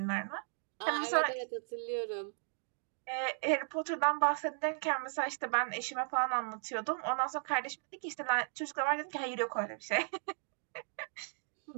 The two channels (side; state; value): left; silent; digital silence